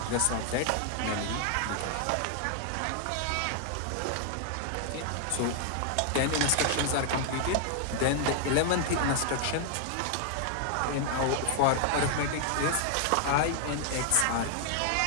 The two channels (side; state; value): both; different; correlation 0.00